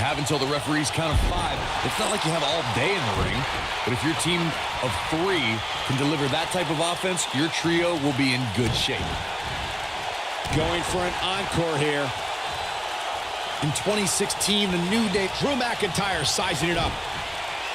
until the referee's count of 5. It's not like you have all day in the ring, but if your team of 3 can deliver that type of offense, your trio will be in good shape. Going for an encore here. In 2016, the New Day... Drew McIntyre sizing it up.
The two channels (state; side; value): identical; both; correlation 1.00